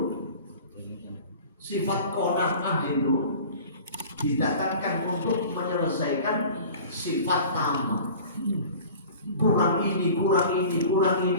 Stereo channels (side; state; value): both; inverted; correlation -0.42